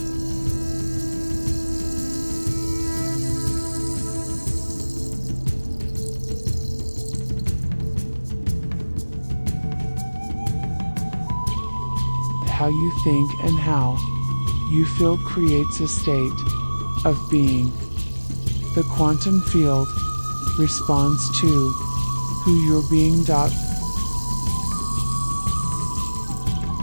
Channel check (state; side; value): inverted; both; correlation -1.00